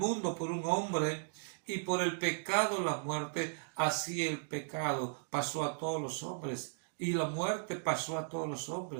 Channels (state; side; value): silent; left; digital silence